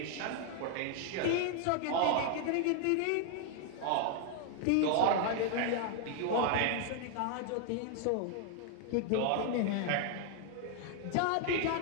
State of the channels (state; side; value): different; both; correlation 0.00